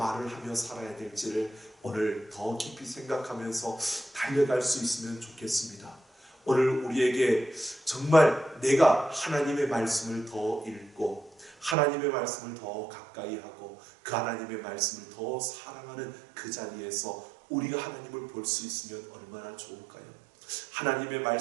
하며 살아야 될지를 오늘 더 깊이 생각하면서 달려갈 수 있으면 좋겠습니다. 오늘 우리에게 정말 내가 하나님의 말씀을 더 읽고, 하나님의 말씀을 더 가까이 하고, 그 하나님의 말씀을 더 사랑하는 그 자리에서 우리가 하나님을 볼 수 있으면 얼마나 좋을까요? 하나님의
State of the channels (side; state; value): left; drops out; at 11.8 s